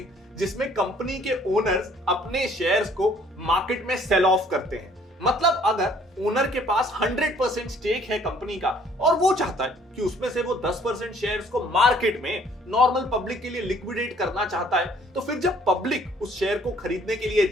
जिसमें कंपनी के ओनर्स अपने शेयर्स को मार्केट में सेल ऑफ करते हैं। मतलब अगर ओनर के पास 100% स्टेक है कंपनी का और वो चाहता है कि उसमें से वो 10% शेयर्स को मार्केट में नॉर्मल पब्लिक के लिए लिक्विडेट करना चाहता है, तो फिर जब पब्लिक उस शेयर को खरीदने के लिए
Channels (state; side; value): normal; both; correlation 0.59